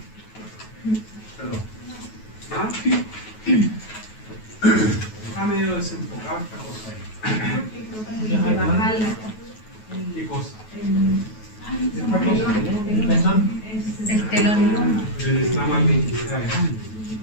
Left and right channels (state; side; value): late; right; 9.3 ms